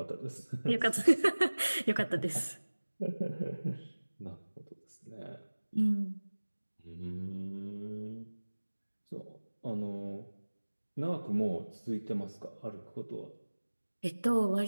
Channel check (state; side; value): inverted; both; correlation -1.00